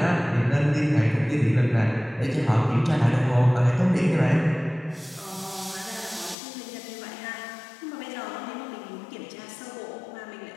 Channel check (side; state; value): right; drops out; at 6.4 s